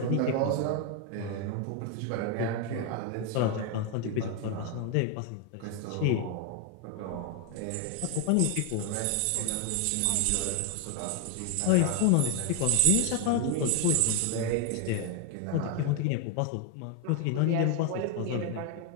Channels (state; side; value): different; both; correlation 0.01